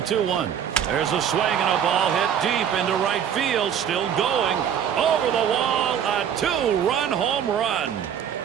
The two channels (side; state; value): left; quieter; 8.8 dB